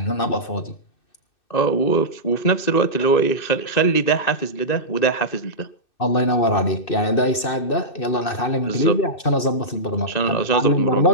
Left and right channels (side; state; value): right; late; 2.6 ms